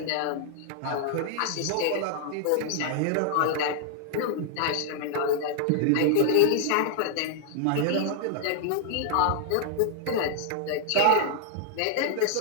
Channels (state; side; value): different; both; correlation 0.00